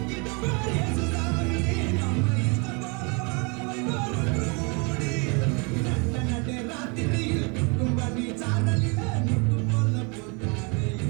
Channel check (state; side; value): quieter; left; 31.9 dB